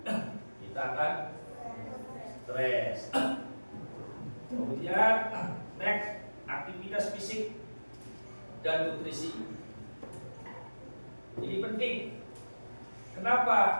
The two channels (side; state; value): both; inverted; correlation -1.00